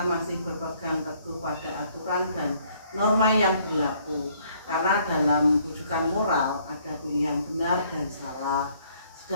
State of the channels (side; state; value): both; inverted; correlation -0.65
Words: masih berpegang teguh pada aturan dan norma yang berlaku, karena dalam bujukan moral ada pilihan benar dan salah,